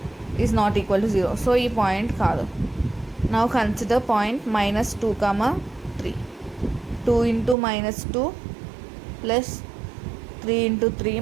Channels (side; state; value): left; drops out; at 7.6 s